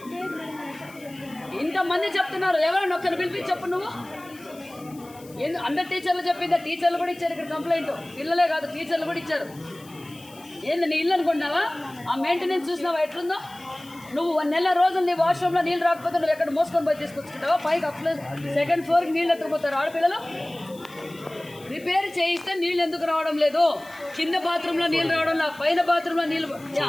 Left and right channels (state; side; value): noise; left; hiss, 23 dB below the sound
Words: ఇంతమంది చెప్తున్నారు, ఎవరైనా ఒక్కరిని పిలిపించి చెప్పు నువ్వు. అందరు టీచర్లు చెప్పిందా? టీచర్లు కూడా ఇచ్చారు ఇక్కడ కంప్లైంట్. పిల్లలే కాదు, టీచర్లు కూడా ఇచ్చారు. ఏంది నీ ఇల్లు అనుకుంటున్నావా? ఆ మెయింటెనెన్స్ చూసినావా ఎట్లుందో? నువ్వు 1 నెల రోజులు నీ వాష్రూమ్లో నీళ్ళు రాకపోతే నువ్వు ఎక్కడ మోసుకొని పోయి తీసుకొచ్చుకుంటావా? పైకి సెకండ్ ఫ్లోర్కి నీళ్ళు ఎత్తుకుపోతారు ఆడపిల్లలు. రిపేర్ చేయిస్తే నీళ్ళు ఎందుకు రావడం లేదు? కింద బాత్రూంలో నీళ్ళు రావడం లేదు, పైన బాత్రూంలో నీళ్ళు.